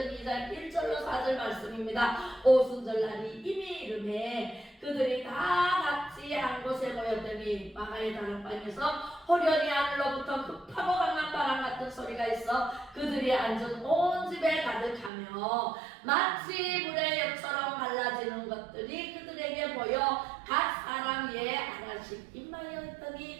2장 1절로 4절 말씀입니다. 오순절날이 이미 이름에 그들이 다 같이 한 곳에 모였더니 마가의 다락방에서 호련히 하늘로부터 급하고 강한 바람 같은 소리가 있어 그들이 앉은 온 집에 가득하며 마치 물의 엽처럼 갈라지는 것들이 그들에게 보여 각 사람 위에 하나씩 임하여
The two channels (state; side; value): drops out; left; at 15.1 s